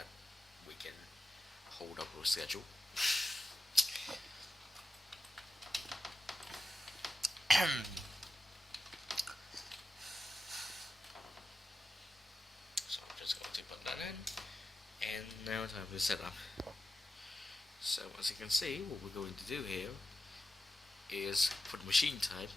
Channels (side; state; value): both; normal; correlation 0.91